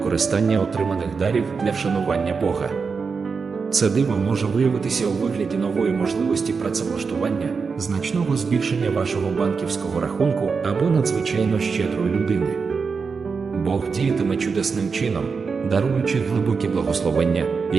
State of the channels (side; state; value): left; quieter; 5.2 dB